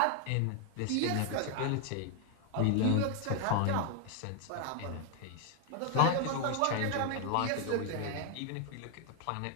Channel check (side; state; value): both; different; correlation 0.00